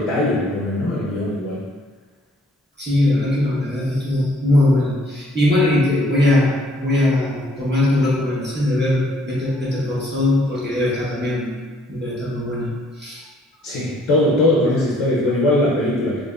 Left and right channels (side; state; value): both; normal; correlation 0.63